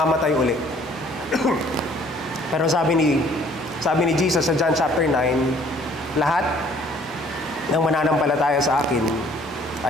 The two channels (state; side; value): normal; both; correlation 0.58